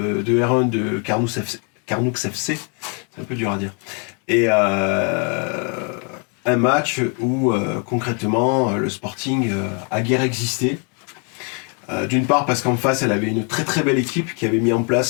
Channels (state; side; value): quieter; right; 37.7 dB